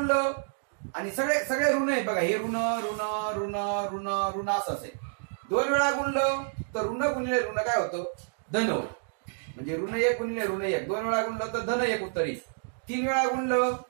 आणि सगळे ऋण आहेत. बघा, हे ऋण ऋण ऋण ऋण ऋण असं असेल. 2 वेळा गुणलं तर ऋण गुणिले ऋण काय होतं? धन होतं. म्हणजे ऋण 1 गुणिले ऋण 1. 2 वेळा गुणलं तर धन 1 उत्तर येईल. 3 वेळा गुणलं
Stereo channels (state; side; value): silent; left; digital silence